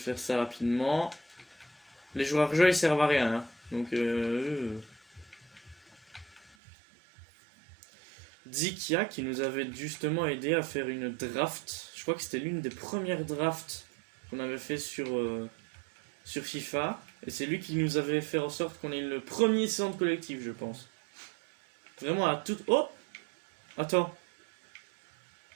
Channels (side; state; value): left; drops out; at 6.6 s